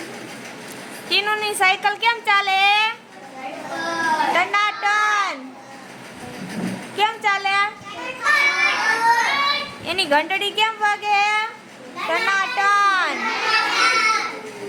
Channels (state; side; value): identical; both; correlation 1.00